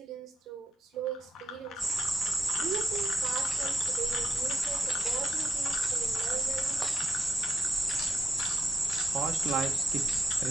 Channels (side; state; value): both; normal; correlation 0.81